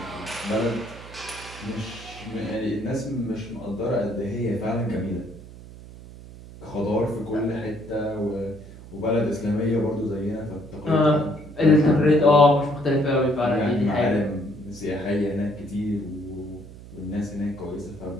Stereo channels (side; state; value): right; noise; hum, 16 dB below the sound